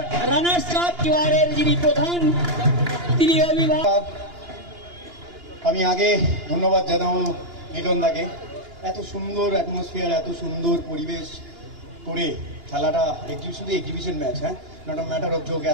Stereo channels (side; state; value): left; late; 2.9 ms